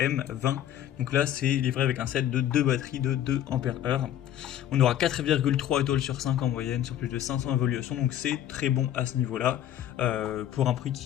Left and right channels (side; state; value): right; quieter; 11.4 dB